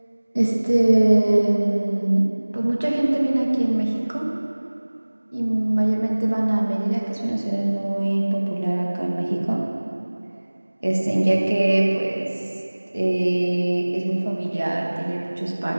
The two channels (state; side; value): inverted; both; correlation -1.00